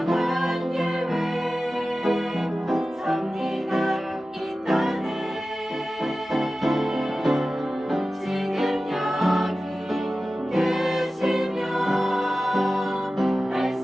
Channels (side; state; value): both; normal; correlation 0.95